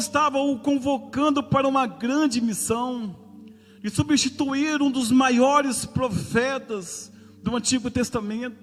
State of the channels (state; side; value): identical; both; correlation 1.00